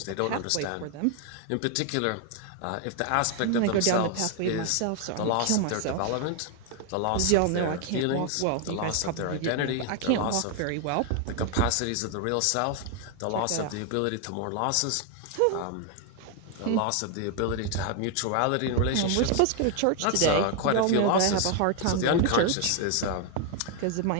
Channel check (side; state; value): both; different; correlation 0.00